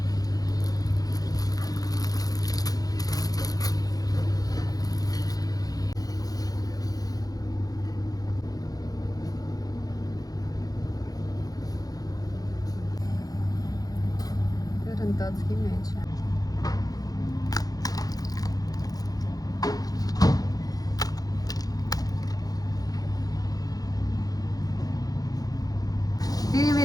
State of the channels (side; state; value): right; late; 0.18 ms